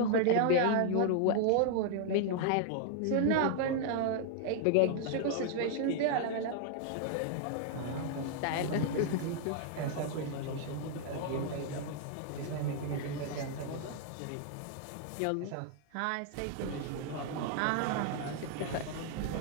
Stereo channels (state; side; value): different; both; correlation 0.00